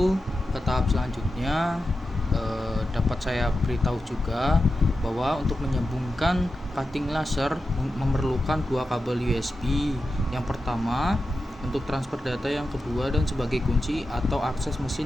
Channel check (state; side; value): normal; both; correlation 0.91